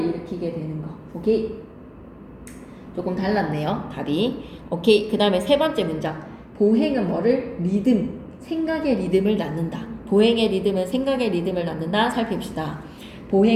일으키게 되는 거. 오케이? 조금 달랐네요. 답이. 오케이. 그 다음에 세 번째 문장. 보행은 뭐를? 리듬. 생각의 리듬을 낳는다. 보행의 리듬은 생각의 리듬을 낳는다. 살핍시다.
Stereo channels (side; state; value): both; identical; correlation 1.00